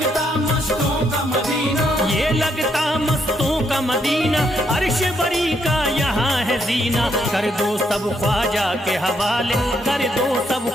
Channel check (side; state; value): both; normal; correlation 0.75